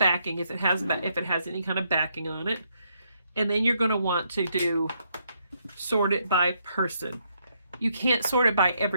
if it has any kind of backing on it, and then you're going to want to sort it by person. You can't sort it by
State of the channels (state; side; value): inverted; both; correlation -0.75